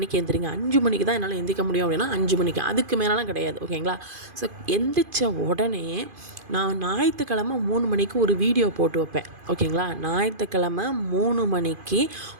எந்திரிங்க. 5 மணிக்கு தான் என்னால் எந்திக்க முடியும் அப்படின்னா 5 மணிக்கு, அதுக்கு மேலாம் கிடையாது. ஓகேங்களா, ஸோ எந்திரிச்ச உடனே நான் ஞாயிற்றுக்கிழமை 3 மணிக்கு ஒரு வீடியோ போட்டு வைப்பேன். ஓகேங்களா, ஞாயிற்றுக்கிழமை 3 மணிக்கு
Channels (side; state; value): left; late; 2.5 ms